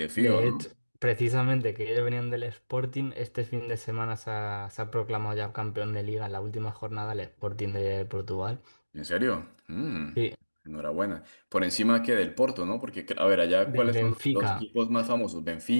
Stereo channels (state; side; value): inverted; both; correlation -1.00